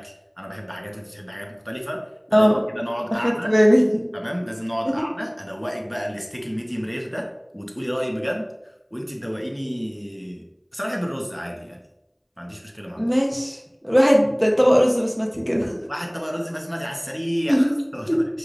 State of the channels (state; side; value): identical; both; correlation 1.00